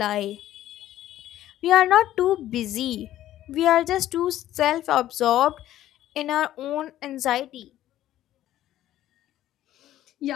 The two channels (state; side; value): quieter; right; 13.2 dB